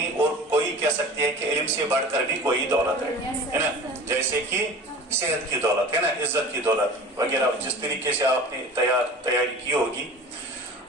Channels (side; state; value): both; normal; correlation 0.39